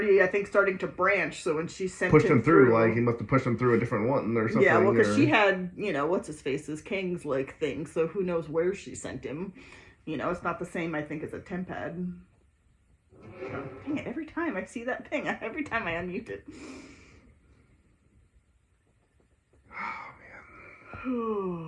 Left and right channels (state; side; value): identical; both; correlation 1.00